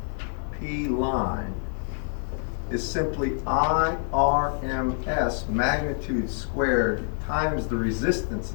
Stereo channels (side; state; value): right; silent; 61 dB below the other